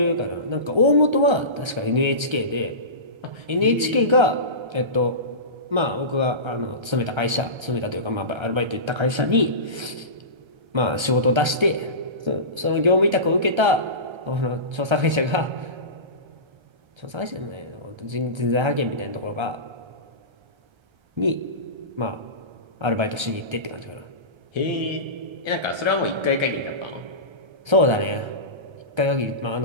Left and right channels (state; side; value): late; left; 1.3 ms